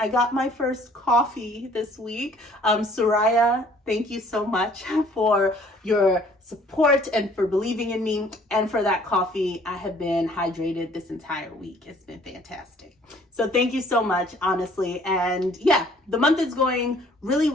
got my first coffee this week. Soraya, thank you so much for your support and for believing in me, and for that coffee. I have been hydrated this entire week. It's been fantastic. So thank you so much, honestly. And yeah, the month is going really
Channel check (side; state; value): both; normal; correlation 0.57